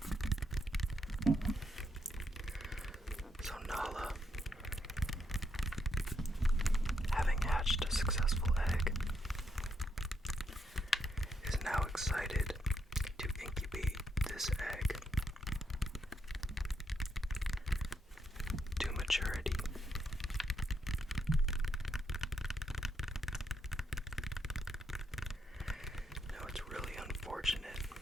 So Nala, having hatched a successful egg, is now excited to incubate this egg to maturity. Now it's really unfortunate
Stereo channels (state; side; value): normal; both; correlation 0.78